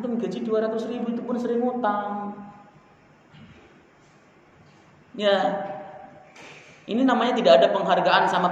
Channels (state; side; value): identical; both; correlation 1.00